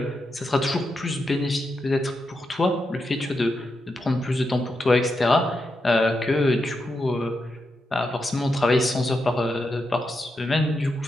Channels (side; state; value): both; normal; correlation 0.85